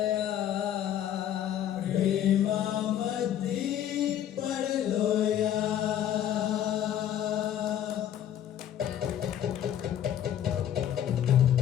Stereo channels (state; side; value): quieter; right; 10.5 dB